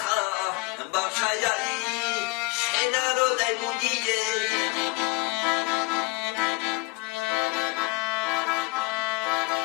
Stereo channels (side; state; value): right; quieter; 24.2 dB